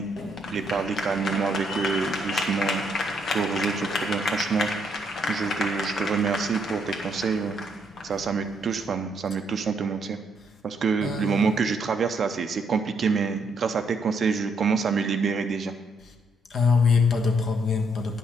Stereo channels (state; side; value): normal; both; correlation 0.73